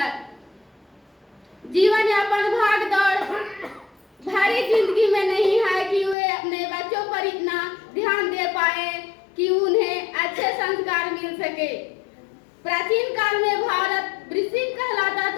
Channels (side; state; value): right; drops out; at 6.2 s